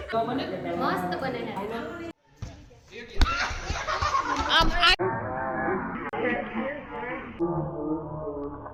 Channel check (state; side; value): identical; both; correlation 1.00